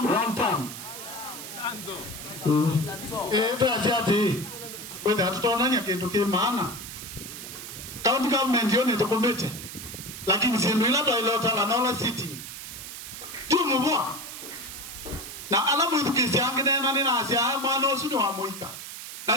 Tatiati whether hatutonanya kitu kimaana county government yoni tukomete lakini sindu ila toilota la nola city tu mubwa na alamu idukisi angine na nina asia mwana osu ni wa muika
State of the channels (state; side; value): noise; right; hiss, 10 dB below the sound